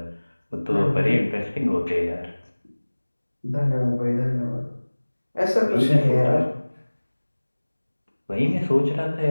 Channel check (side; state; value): both; inverted; correlation -1.00